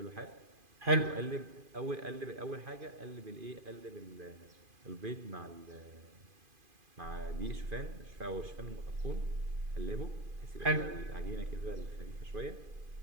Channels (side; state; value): left; late; 2.5 ms